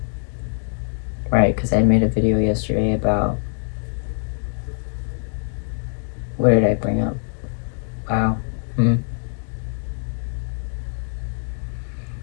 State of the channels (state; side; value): silent; right; digital silence